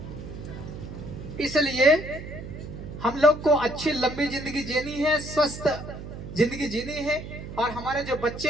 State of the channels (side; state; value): right; noise; hum, 10 dB below the sound